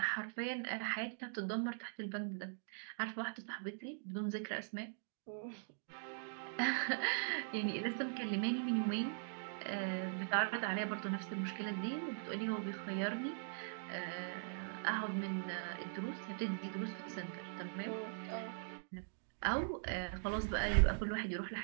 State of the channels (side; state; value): left; silent; digital silence